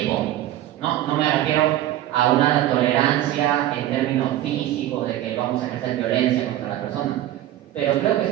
No me refiero a una tolerancia en términos físicos de que vamos a ejercer violencia contra la persona. Pero creo que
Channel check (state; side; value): quieter; left; 13.5 dB